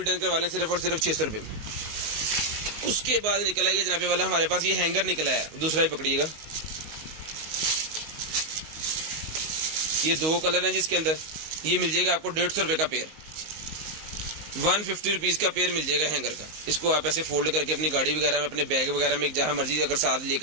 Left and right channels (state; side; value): late; left; 19 ms